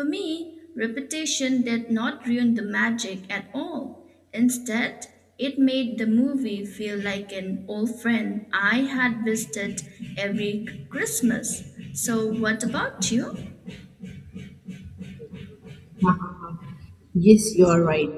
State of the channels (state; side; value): identical; both; correlation 1.00